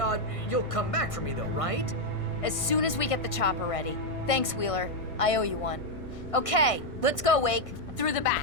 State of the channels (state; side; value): late; right; 1.5 ms